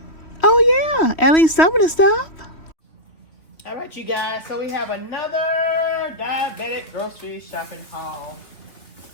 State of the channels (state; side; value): late; right; 3.1 ms